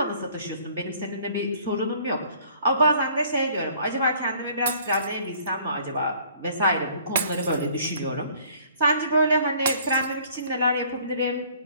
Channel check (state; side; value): inverted; both; correlation -0.56